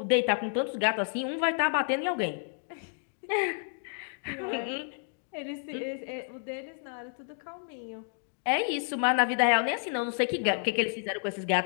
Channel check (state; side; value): silent; right; 58 dB below the other